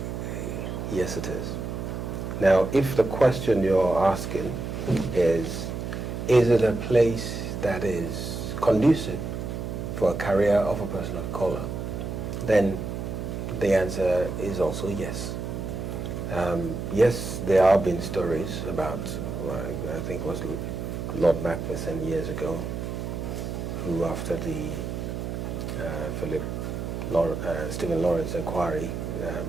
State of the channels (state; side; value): noise; right; hum, 5 dB below the sound